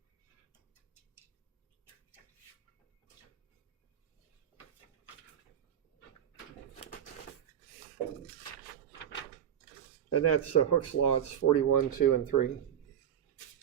And that's Hooke's law. It's 41, 2, and 3.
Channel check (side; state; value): left; quieter; 9.4 dB